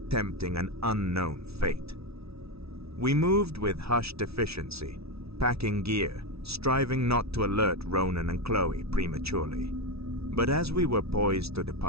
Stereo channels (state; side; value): late; left; 0.78 ms